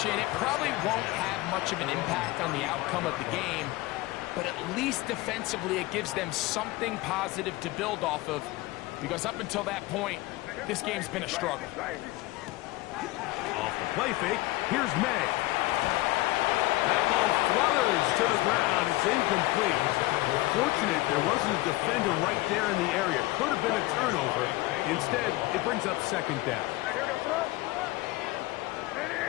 it probably won't have much of an impact on the outcome of the game, but at least defensively it gives them something positive to build off of, because up until that point, this game's been a struggle. Off the play fake, here's May. That ball flutters to the ground. It's incomplete. Fortunate there wasn't a defender right there in the area. Could have been a turnover. Instead, it brings up 2nd down.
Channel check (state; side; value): quieter; right; 19.7 dB